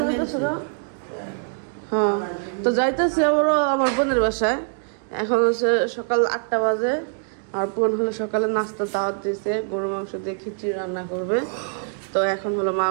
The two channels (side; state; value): left; silent; 63 dB below the other